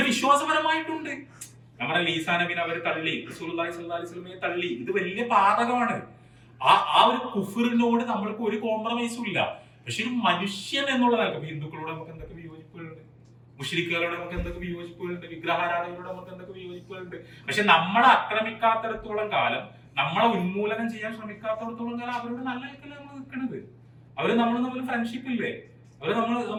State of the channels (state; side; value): identical; both; correlation 1.00